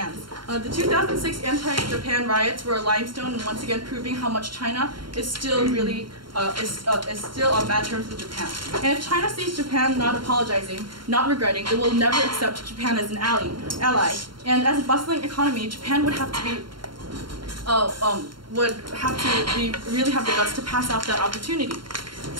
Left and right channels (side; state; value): left; late; 0.72 ms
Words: The 2006 anti-Japan riots were a limestone, and once again proving how much China is still really is still on bad terms with Japan. And if China sees Japan not apologizing, not regretting, it will never accept Japan as an ally. And as a bustling economy, Japan would have to really have the guts to pass out that opportunity.